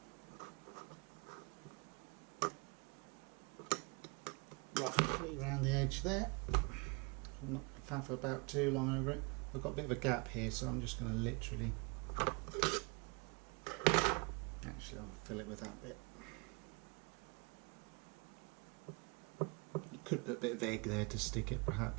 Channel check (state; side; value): quieter; left; 29.5 dB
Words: Roughly around the edge there. I'm not faff about too long over it. I've got a bit of a gap here, so I'm just going to literally, actually I'll fill it with that bit. You could put a bit of egg there to stick it